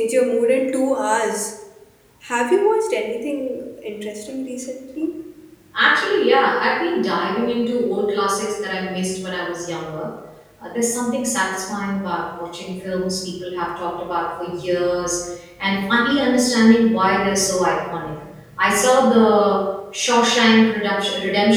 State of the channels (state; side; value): identical; both; correlation 1.00